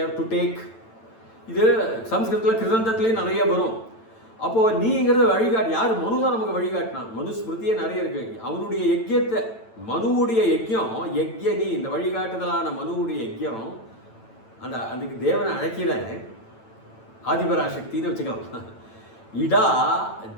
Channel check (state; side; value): late; right; 9.0 ms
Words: டு டேக். இது சம்ஸ்கிருதத்தில் கிருதந்தத்துலேயும் நிறைய வரும். அப்போது நீங்கிறது வழிகாட்டு. யார்? மனு தான் நமக்கு வழிகாட்டினான். மனுஸ்மிருதியே நிறைய இருக்கு. அவனுடைய யஜ்யத்தை, மனுவுடைய யஜ்யம், யஜ்யனி, இந்த வழிகாட்டுதலான மனுவுடைய யஜ்யம், அதுக்கு தேவனை அழைக்கிற ஆதிபராசக்தின்னு வச்சுக்கலாம். இடா